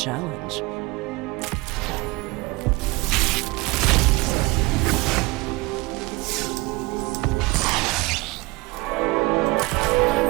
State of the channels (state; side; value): quieter; left; 23.3 dB